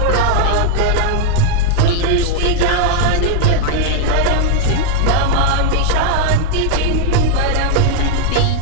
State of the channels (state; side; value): different; both; correlation 0.00